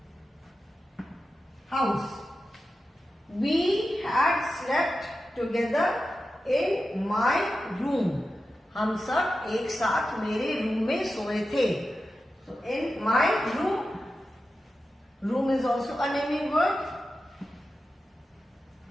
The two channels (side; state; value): both; normal; correlation 0.92